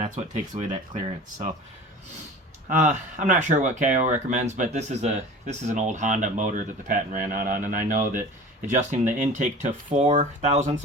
what takes away that clearance. So I'm not sure what Kayo recommends, but this is an old Honda motor that the patent ran out on, and I know that adjusting the intake to 4/1000ths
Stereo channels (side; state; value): both; normal; correlation 0.39